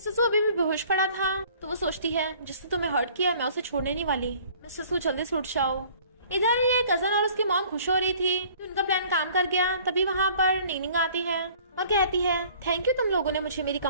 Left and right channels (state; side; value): inverted; both; correlation -0.53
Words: सू अभी भी बेहोश पड़ा था, तो वो सोचती है जिसने तुम्हें हर्ट किया मैं उसे छोड़ने नहीं वाली, मिस्टर सू जल्दी से उठ जाओ। इधर ये कजन और उसकी मॉम खुश हो रही थी कि उनका प्लान काम कर गया। तभी वहाँ पर निंगनिंग आती है और कहती है थैंक यू, तुम लोगों ने मुझे मेरी